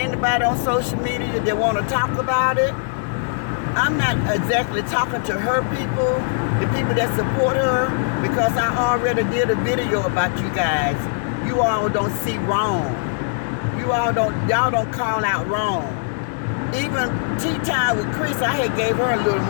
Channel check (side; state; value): right; silent; digital silence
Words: on social media that want to talk about it. I'm not exactly talking to her people, the people that support her, because I already did a video about you guys. You all don't see wrong. Y'all don't call out wrong. Even Tea Time with Chris, I had gave her a little